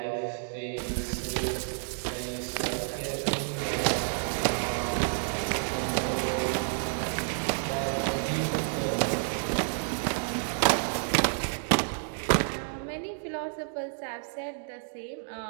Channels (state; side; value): silent; left; digital silence